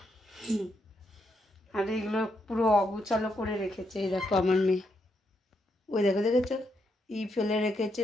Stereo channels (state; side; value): normal; both; correlation 0.79